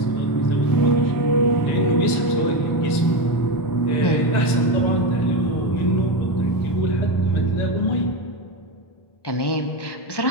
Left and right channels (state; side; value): late; right; 1.9 ms